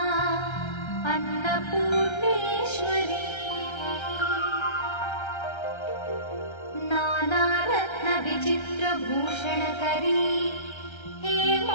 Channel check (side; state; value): right; late; 1.3 ms